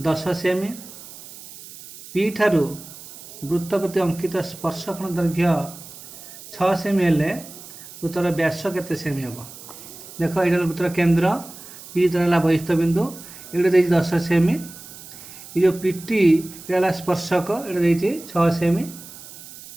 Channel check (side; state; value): right; noise; hiss, 16 dB below the sound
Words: 10 सेमी, पी ठारू वृत्त प्रति अंकित स्पर्शकोण दैर्घ्य 6 सेमी हेले वृत्तर व्यास केते सेमी हम। देख ये वृत्तर केन्द्र पी है बहिस्थ बिंदु, ये 10 सेमी, ये जो पीटी ये स्पर्शक ये 6 सेमी।